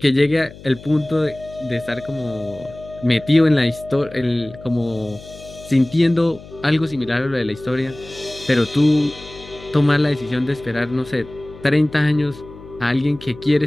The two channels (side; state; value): left; noise; hum, 18 dB below the sound